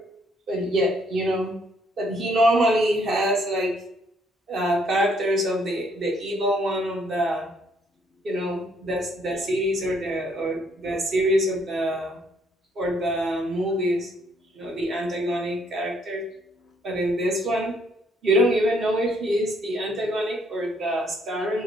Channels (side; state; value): both; normal; correlation 0.68